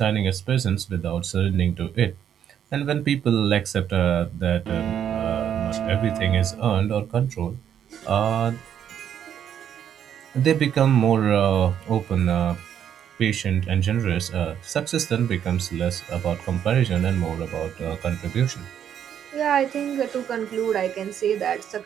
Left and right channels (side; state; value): left; quieter; 9.2 dB